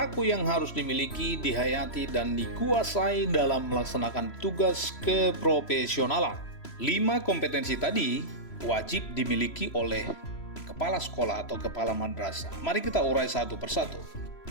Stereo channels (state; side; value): late; right; 3.0 ms